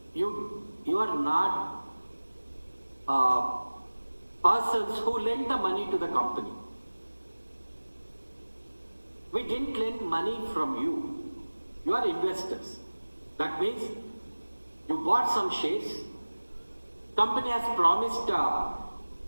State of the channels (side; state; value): both; inverted; correlation -1.00